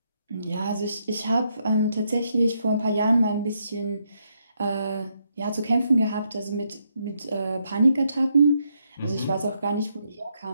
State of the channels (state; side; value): inverted; both; correlation -0.77